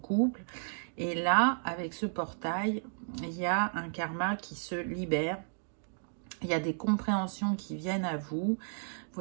Et là, avec ce portail, il y a un karma qui se libère. Il y a des compréhensions qui viennent à vous. Vous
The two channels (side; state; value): left; silent; digital silence